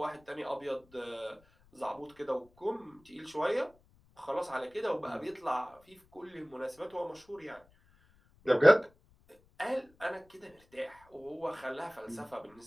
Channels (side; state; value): left; noise; rumble, 30 dB below the sound